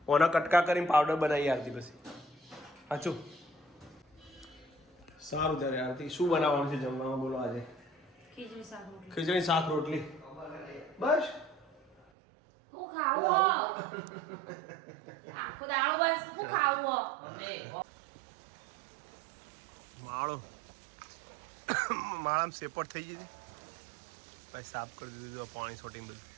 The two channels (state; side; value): drops out; left; at 12.1 s